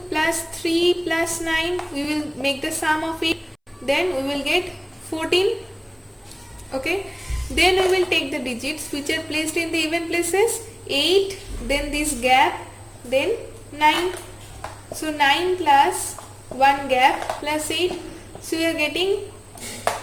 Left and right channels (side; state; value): both; identical; correlation 1.00